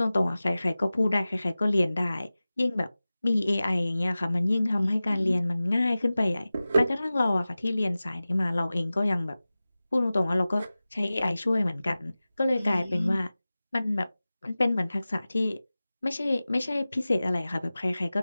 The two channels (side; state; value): both; inverted; correlation -0.97